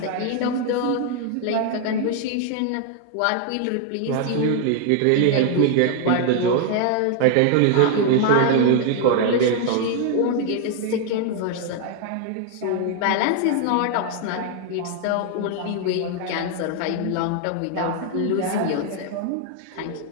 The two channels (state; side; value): different; both; correlation 0.00